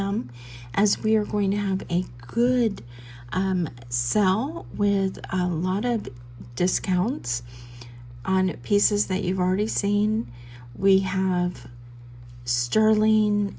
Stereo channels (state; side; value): identical; both; correlation 1.00